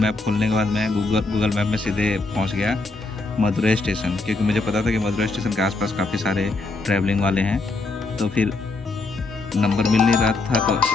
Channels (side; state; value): right; quieter; 3.4 dB